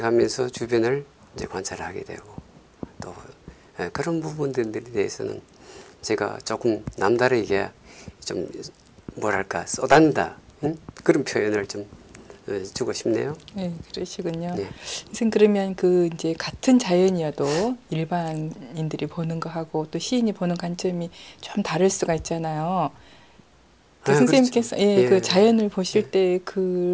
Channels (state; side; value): identical; both; correlation 1.00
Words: 주변을 이제 관찰하게 되고 또 그런 부분들에 대해서는 제가 조금 남다르게 좀 뭐랄까 쏟아낸다 그런 표현을 좀 주고 싶네요. 네, 그러시군요. 네. 선생님 그러면 그 이제 같은 자연이어도 일반인들이 보는 거하고 또 시인이 보는 관점이 좀 다를 수가 있잖아요. 그 선생님께서 그렇죠. 예, 그 예, 자연을 보실 예. 때